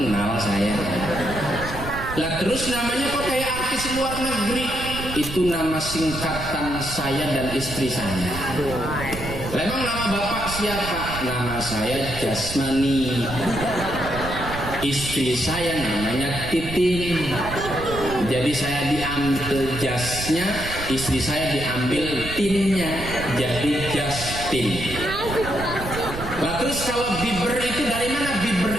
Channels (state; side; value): noise; right; rumble, 9 dB below the sound